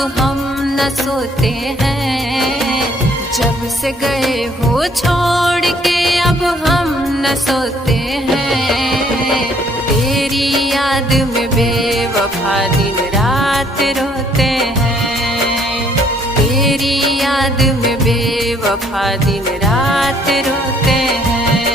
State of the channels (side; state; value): both; normal; correlation 0.63